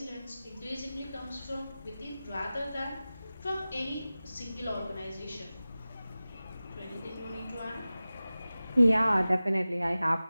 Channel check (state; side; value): inverted; both; correlation -0.97